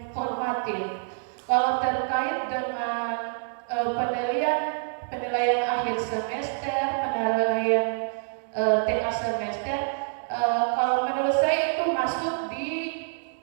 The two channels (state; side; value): silent; left; digital silence